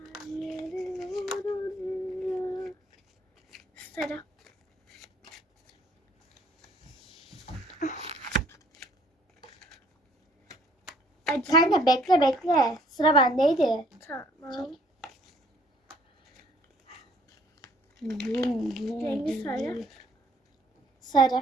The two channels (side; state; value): both; normal; correlation 0.61